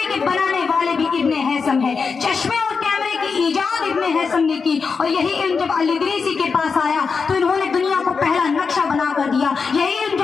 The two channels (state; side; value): quieter; right; 5.2 dB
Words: کے بنانے والے بھی ابن ہیثم ہے۔ چشمے اور کیمرے کی ایجاد ابن ہیثم نے کی، اور یہی علم جب الادریسی کے پاس آیا تو انہوں نے دنیا کو پہلا نقشہ بنا کر دیا۔ یہی علم